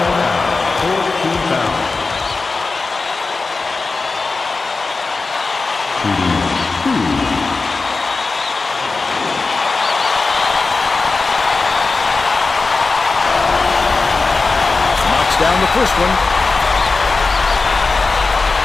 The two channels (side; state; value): right; quieter; 4.0 dB